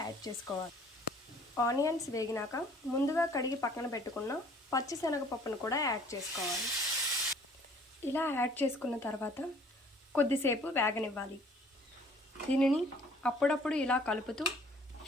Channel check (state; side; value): normal; both; correlation 0.55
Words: యాడ్ చేసుకోవాలి. ఆనియన్స్ వేగినాక ముందుగా కడిగి పక్కన పెట్టుకున్న పచ్చిశనగపప్పును కూడా యాడ్ చేసుకోవాలి. ఇలా యాడ్ చేసుకున్న తర్వాత కొద్దిసేపు వేగనివ్వాలి. దీనిని అప్పుడప్పుడు ఇలా కలుపుతూ